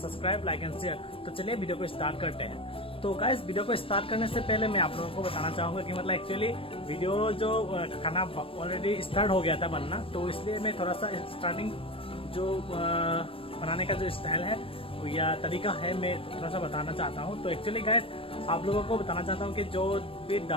like and share. तो चलिए वीडियो को स्टार्ट करते हैं। तो गाइस, वीडियो को स्टार्ट करने से पहले मैं आप लोगों को बताना चाहूँगा कि मतलब एक्चुअली वीडियो जो खाना ऑलरेडी स्टार्ट हो गया था बनना, तो इसलिए मैं थोड़ा सा स्टार्टिंग जो बनाने का जो स्टाइल है या तरीका है मैं थोड़ा सा बताना चाहता हूँ। तो एक्चुअली गाइस, आप लोगों को बताना चाहता हूँ कि जो भी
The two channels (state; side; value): late; right; 0.26 ms